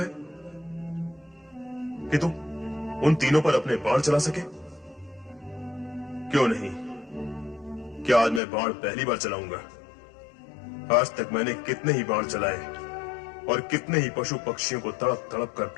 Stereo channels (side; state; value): right; drops out; at 8.4 s